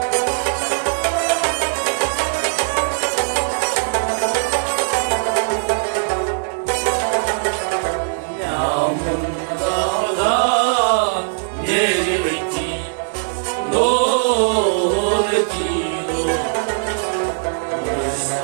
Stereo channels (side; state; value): left; silent; digital silence